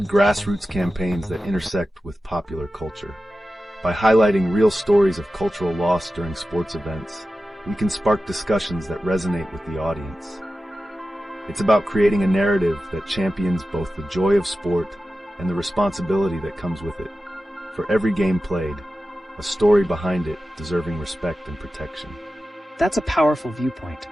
grassroots campaigns that intersect with popular culture. By highlighting real stories of cultural loss during sports events, we can spark discussions that resonate with the audience. It's about creating a narrative that champions both the joy of sport and the responsibility that comes with it. For every game played, a story behind it deserving respect and protection. That's a powerful viewpoint.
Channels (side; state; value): both; normal; correlation 0.93